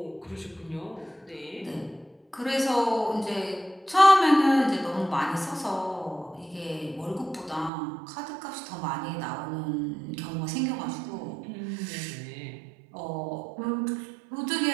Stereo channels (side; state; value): left; drops out; at 7.7 s